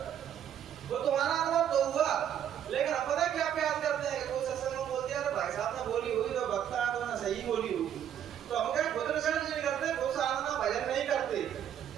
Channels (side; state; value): left; quieter; 9.7 dB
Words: वो तुम्हारा अनुभव तो हुआ। लेकिन अब पता क्या प्रयास करते हैं, कोई सत्संग में बोल दिया भाई साहब ने बोली हुई तो वक्ता तो ना सही बोली हुई, तो हम क्या खुद रिसर्च नहीं करते, खुद साधना भजन नहीं करते,